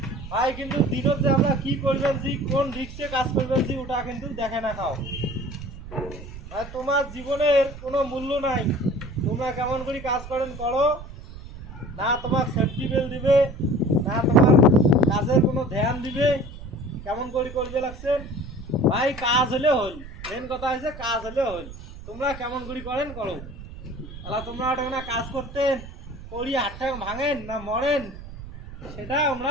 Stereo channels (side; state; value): right; noise; rumble, 13 dB below the sound